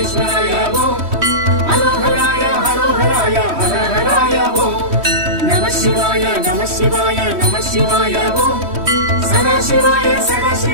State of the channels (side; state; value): left; late; 3.1 ms